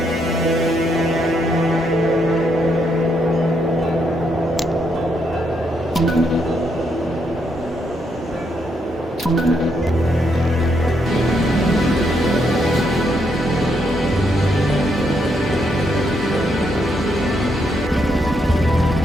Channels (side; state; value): both; normal; correlation 0.77